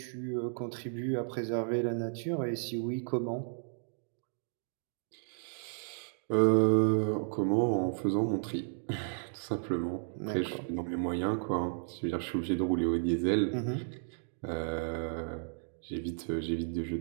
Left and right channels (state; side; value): silent; left; digital silence